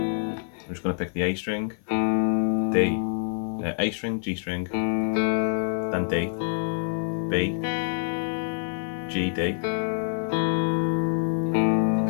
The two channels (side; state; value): right; silent; 56 dB below the other